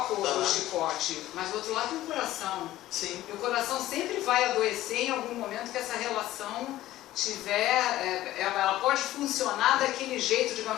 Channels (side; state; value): right; quieter; 15.0 dB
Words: do chicote, mas do outro lado tem o coração. Sim. E o coração sempre vai adoecer em algum momento que essa relação tiver, ela pode funcionar daquele jeito,